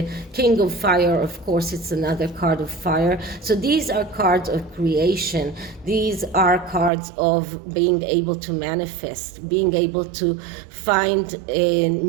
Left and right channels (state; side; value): drops out; left; at 6.9 s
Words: King of Fire, of course, it's another card of fire. So these are cards of creation. These are cards of being able to manifest, being able to find